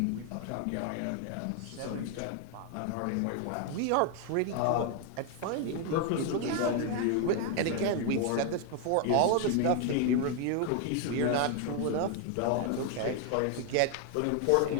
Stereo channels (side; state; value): both; different; correlation 0.00